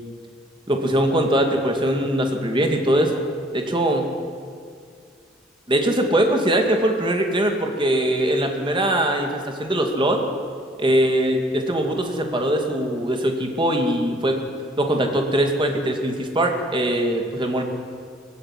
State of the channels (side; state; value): both; normal; correlation 0.57